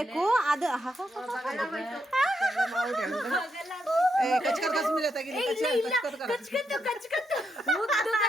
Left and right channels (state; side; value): normal; both; correlation 0.81